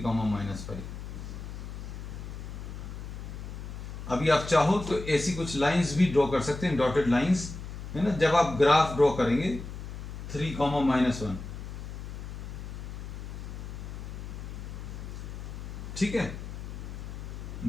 -5। अभी आप चाहो तो ऐसी कुछ लाइंस भी ड्रॉ कर सकते हैं, डॉटेड लाइंस, है ना। जब आप ग्राफ ड्रॉ करेंगे 3, -1, ठीक है,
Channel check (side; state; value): left; noise; hum, 9 dB below the sound